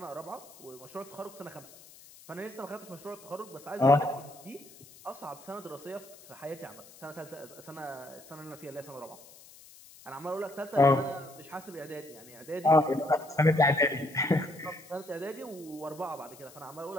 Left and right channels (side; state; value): left; noise; hiss, 21 dB below the sound